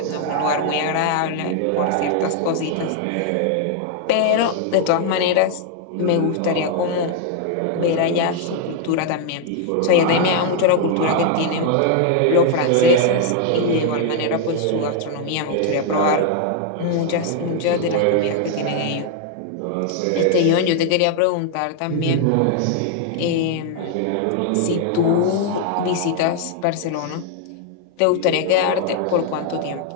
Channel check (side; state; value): both; different; correlation 0.00